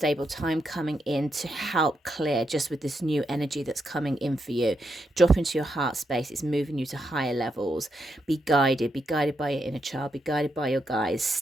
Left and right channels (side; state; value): both; normal; correlation 0.82